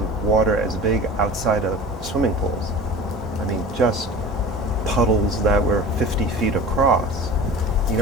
water as big outside of swimming pools. I mean, just puddles that were 50 feet across. You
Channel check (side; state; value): both; normal; correlation 0.37